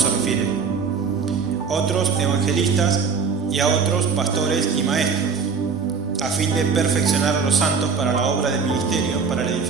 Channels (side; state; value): left; quieter; 5.4 dB